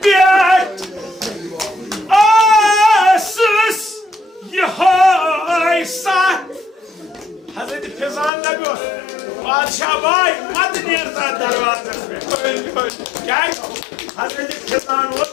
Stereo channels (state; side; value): drops out; right; at 8.3 s